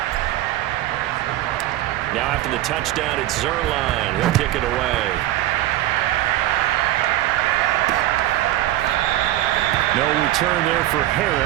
Now after the touchdown, it's Zerline. He'll kick it away. No return there for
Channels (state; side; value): quieter; left; 14.7 dB